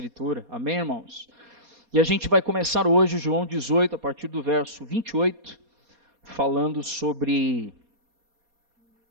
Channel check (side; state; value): left; late; 4.2 ms